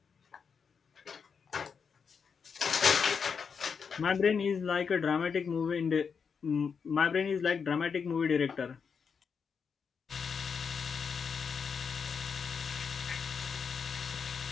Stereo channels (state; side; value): quieter; right; 6.1 dB